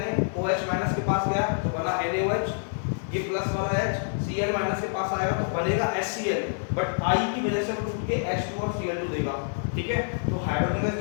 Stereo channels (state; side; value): silent; right; 60 dB below the other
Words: माइनस के पास गया तो बना NaOH, ये प्लस वाला H Cl माइनस के पास आएगा तो बनेगा HCl, बट I की वजह से वो टूट के H2 और Cl2 देगा, ठीक है। तो हाइड्रोजन गैस